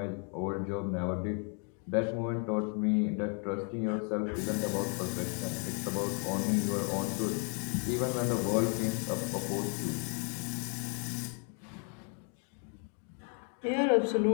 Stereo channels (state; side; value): quieter; right; 38.8 dB